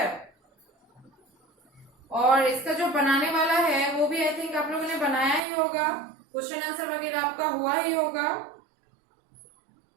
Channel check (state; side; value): drops out; left; at 5.4 s